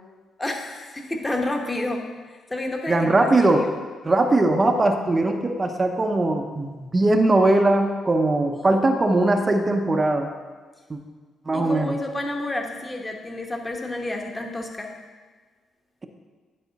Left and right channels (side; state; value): both; normal; correlation 0.90